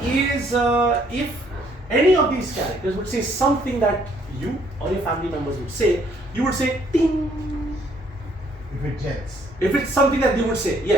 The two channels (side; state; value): both; normal; correlation 0.65